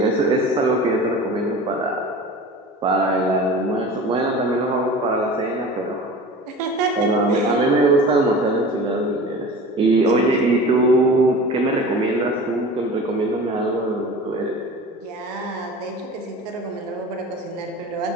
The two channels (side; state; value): both; normal; correlation 0.38